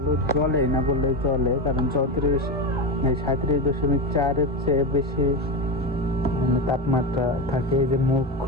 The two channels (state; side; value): normal; both; correlation 0.16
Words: জ্বলে না বললেই চলে, কারণ 37.4-এর চেয়ে বেশি তাপমাত্রা থাকে। এই যে মুখ